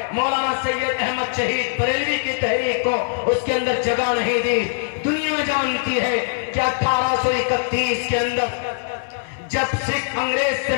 مولانا سید احمد شہید بریلوی کی تحریک کو اس کے اندر جگہ نہیں دی۔ دنیا جانتی ہے کہ 1831 کے اندر جب سکھ انگریز سے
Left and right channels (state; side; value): silent; right; 61 dB below the other